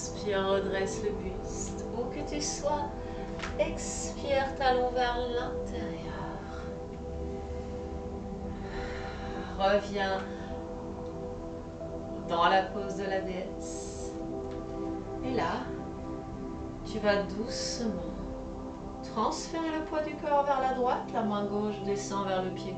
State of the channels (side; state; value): both; identical; correlation 1.00